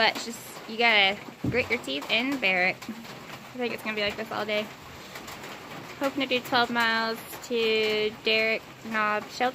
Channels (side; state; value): both; identical; correlation 1.00